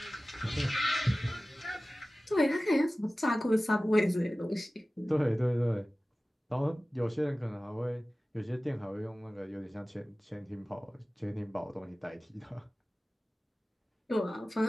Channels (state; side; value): normal; both; correlation 0.97